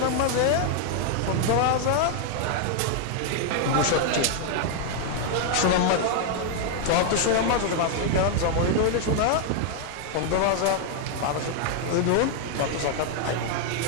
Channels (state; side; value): different; both; correlation 0.00